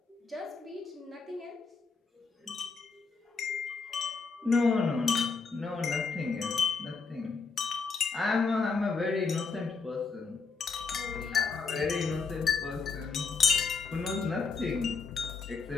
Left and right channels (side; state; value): right; quieter; 4.8 dB